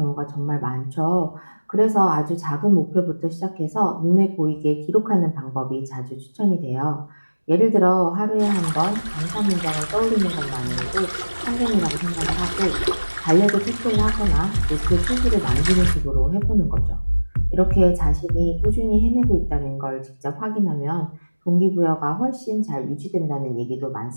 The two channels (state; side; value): inverted; both; correlation -1.00